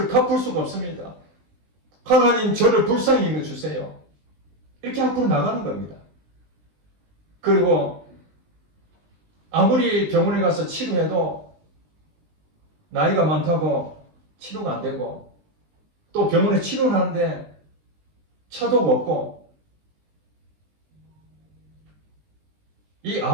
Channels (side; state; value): left; late; 20 ms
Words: 갚을 수가 없습니다. 하나님, 저를 불쌍히 여겨주세요. 이렇게 앞으로 나가는 겁니다. 그리고 아무리 병원에 가서 치료해도 나이가 많다고 치료가 안 되고 또 병원에 치료를 하는데 차도가 없고 이